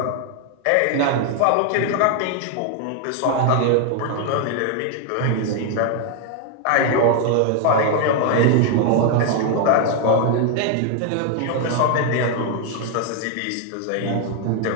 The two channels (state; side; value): different; both; correlation 0.00